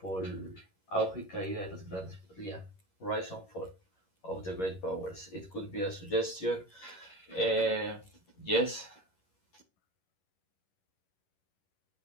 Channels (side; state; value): right; late; 11 ms